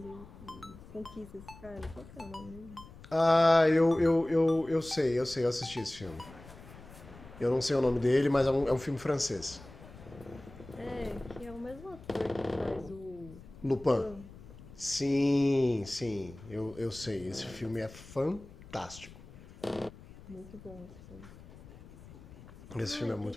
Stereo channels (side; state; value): left; noise; rumble, 18 dB below the sound